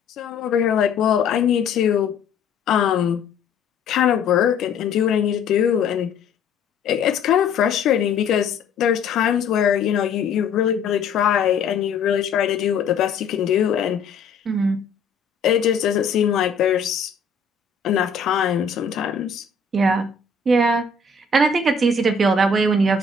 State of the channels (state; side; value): quieter; right; 4.8 dB